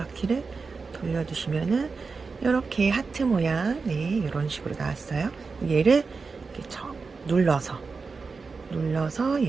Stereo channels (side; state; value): left; quieter; 4.6 dB